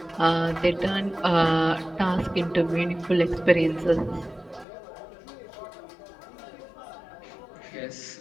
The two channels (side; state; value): right; drops out; at 4.7 s